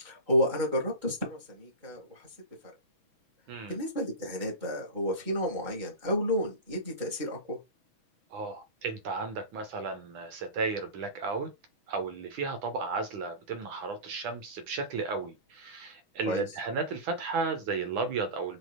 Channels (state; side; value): late; left; 6.2 ms